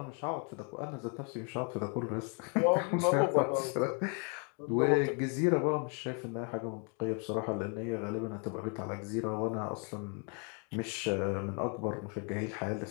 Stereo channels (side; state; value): right; quieter; 38.0 dB